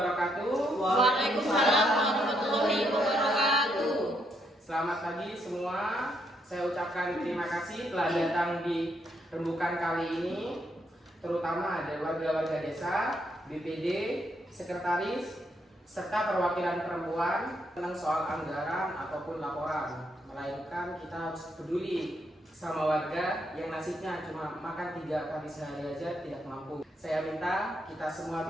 Waalaikumsalam warahmatullahi wabarakatuh. Selamat pagi semua. Saya ucapkan terima kasih telah datang di rembukan kali ini, terutama ada warga-warga desa, BPD, sekretaris, serta perwakilan perempuan tentang soal anggaran ataupun laporan. Melainkan kita harus peduli sama warga yang nasibnya cuma makan 3 kali sehari aja tidak mampu. Saya minta kita semua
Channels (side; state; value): both; normal; correlation 0.76